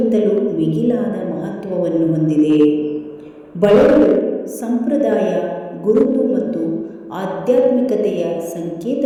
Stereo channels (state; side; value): identical; both; correlation 1.00